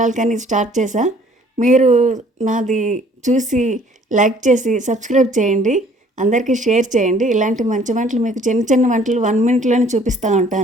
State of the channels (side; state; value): both; normal; correlation 0.57